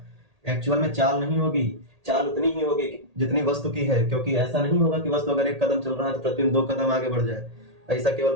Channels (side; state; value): left; late; 1.8 ms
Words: एक्चुअल में चाल नहीं होगी। चाल उतनी ही होगी जितनी वस्तु की है, क्योंकि ऐसा नहीं होगा कि वस्तु अगर 1 कदम चल रहा है तो प्रतिबिंब 2 कदम आगे बढ़ जाए। ऐसा केवल